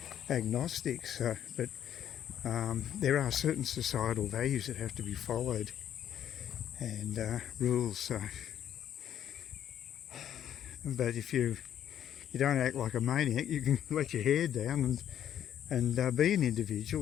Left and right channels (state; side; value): quieter; right; 10.2 dB